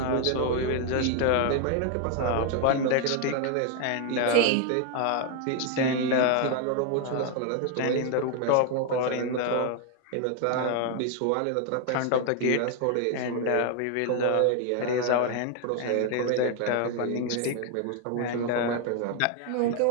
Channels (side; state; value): both; different; correlation 0.01